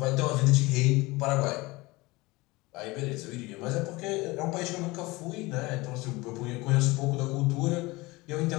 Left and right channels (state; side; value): quieter; right; 22.2 dB